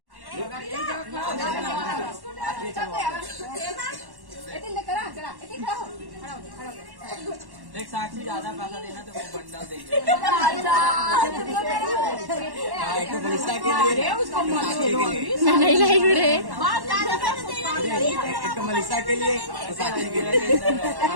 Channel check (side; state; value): left; late; 1.1 ms